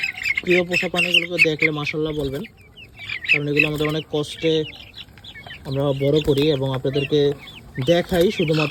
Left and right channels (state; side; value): identical; both; correlation 1.00